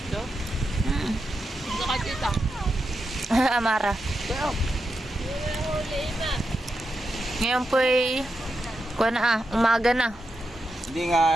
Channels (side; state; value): both; normal; correlation 0.87